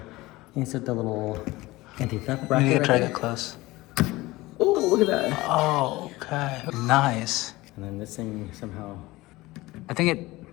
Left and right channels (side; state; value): right; quieter; 19.7 dB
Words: insert the little anti-theft bracket. You need to try right it close. Oh, look at that! Oh, okay. Nice. And then this thing somehow. I think